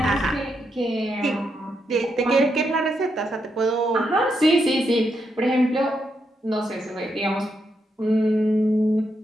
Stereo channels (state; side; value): normal; both; correlation 0.81